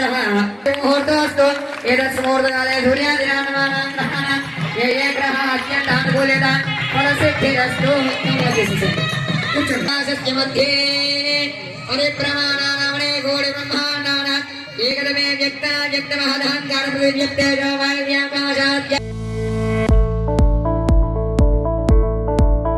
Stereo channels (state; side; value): identical; both; correlation 1.00